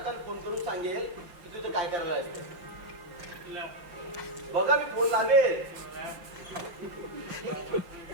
फोन करून सांगेल की तू इथं काय करायला असते. बघा, मी फोन लावेल.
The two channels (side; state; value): left; late; 5.8 ms